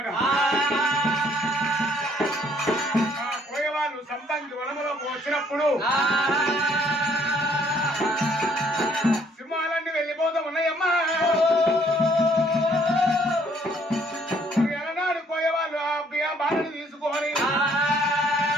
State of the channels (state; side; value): normal; both; correlation 0.64